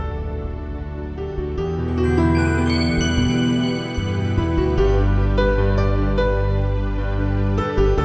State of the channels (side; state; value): both; identical; correlation 1.00